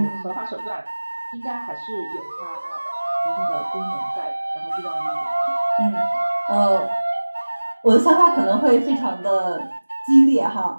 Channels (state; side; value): inverted; both; correlation -1.00